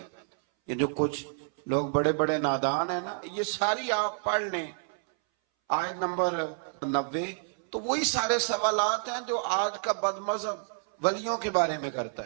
یہ جو کچھ لوگ بڑے بڑے نادان ہیں نا, یہ ساری آپ پڑھ لیں آیت نمبر 90, تو وہی سارے سوالات ہیں جو آج کا بد مذہب ولیوں کے بارے میں کرتا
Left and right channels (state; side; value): silent; left; 58 dB below the other